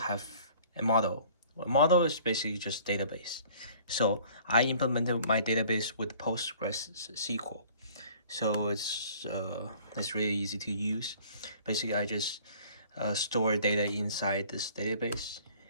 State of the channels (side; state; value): both; inverted; correlation -0.52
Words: a model. A model is basically just database. So I implemented my database with postgreSQL. So it's really easy to use. Basically, I just store data inside this database,